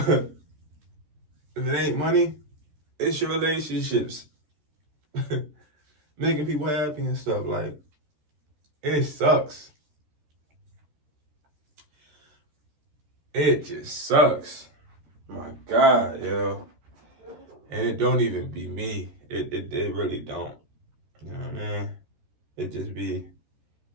it ain't money, it's your relationships. Making people happy and stuff. Like, it sucks. It just sucks. My God, yo. And it don't even be me. It really don't. You know what I mean? It just be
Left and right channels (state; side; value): late; left; 13 ms